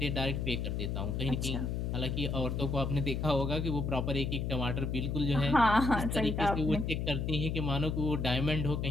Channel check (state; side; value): noise; left; hum, 1 dB below the sound